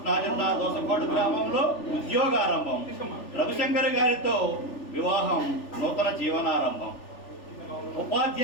జిల్లా దోసకోట గ్రామంలో ఉద్యోగారంభం, రవిశంకర్ గారితో వివాహం, నూతన జీవనారంభం.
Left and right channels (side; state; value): right; late; 3.4 ms